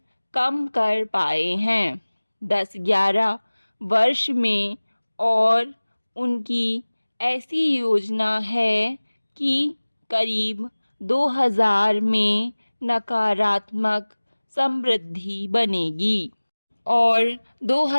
कम कर पाए हैं 10-11 वर्ष में। और उनकी ऐसी योजना है कि करीब 2000 में नकारात्मक समृद्धि बनेगी और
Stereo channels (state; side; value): inverted; both; correlation -1.00